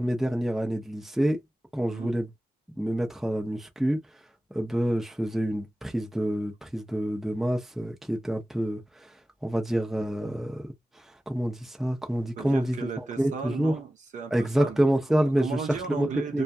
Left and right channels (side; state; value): both; normal; correlation 0.95